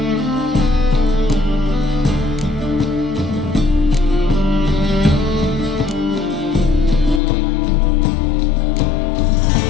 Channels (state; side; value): drops out; right; at 7.2 s